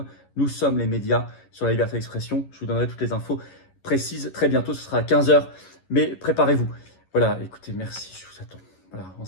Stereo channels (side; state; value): right; late; 11 ms